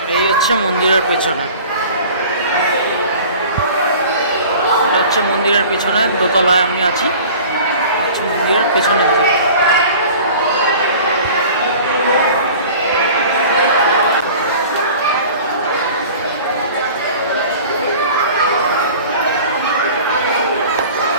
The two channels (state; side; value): inverted; both; correlation -0.43